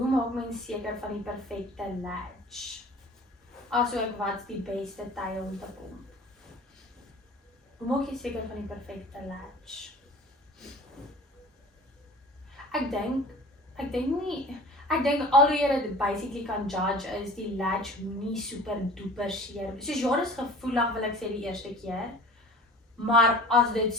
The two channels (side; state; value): both; normal; correlation 0.43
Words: maak mens seker van die perfekte latch? Asook wat's die beste tyd om te pomp? Hoe maak jy seker van die perfekte latch? Ek dink al hoe jy dit basically kan judge is die latch nie super duper seer. Soos jaar is gevoelig wil ek sê die eerste keer. Maar as dit